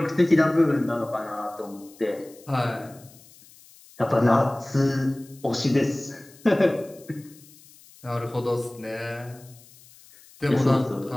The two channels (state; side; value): noise; left; hiss, 24 dB below the sound